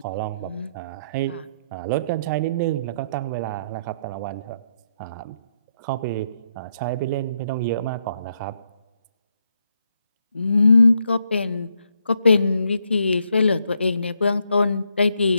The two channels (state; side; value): inverted; both; correlation -0.77